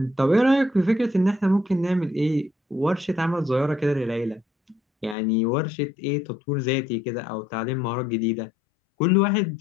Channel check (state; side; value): drops out; right; at 5.2 s